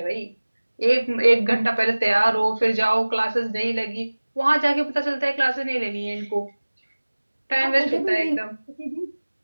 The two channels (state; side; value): inverted; both; correlation -1.00